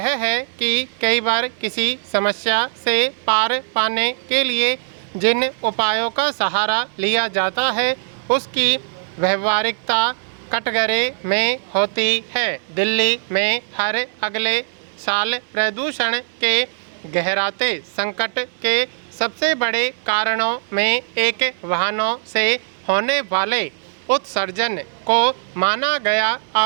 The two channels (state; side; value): silent; left; 65 dB below the other